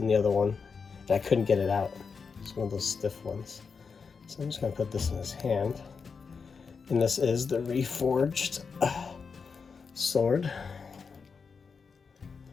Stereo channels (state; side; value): quieter; right; 5.4 dB